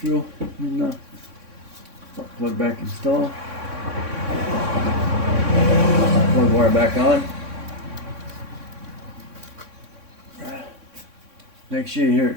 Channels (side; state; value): left; late; 3.6 ms